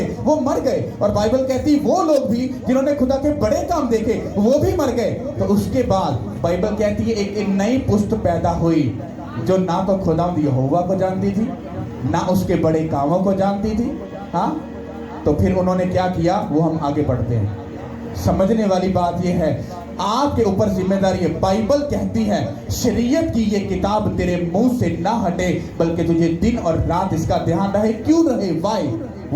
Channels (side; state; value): both; identical; correlation 1.00